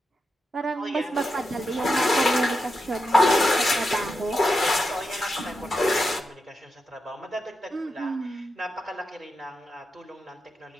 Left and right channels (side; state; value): both; normal; correlation 0.87